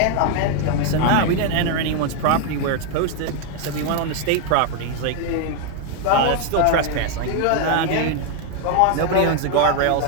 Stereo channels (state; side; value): different; both; correlation 0.01